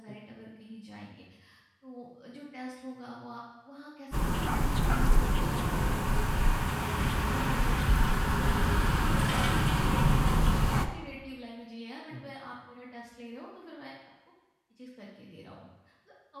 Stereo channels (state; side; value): identical; both; correlation 1.00